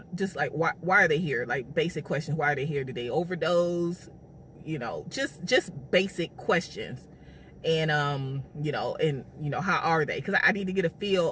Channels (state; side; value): identical; both; correlation 1.00